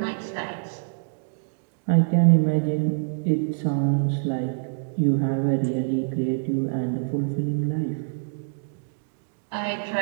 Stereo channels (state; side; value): silent; left; digital silence